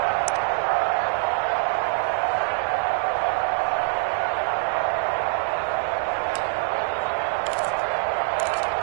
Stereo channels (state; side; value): silent; left; 56 dB below the other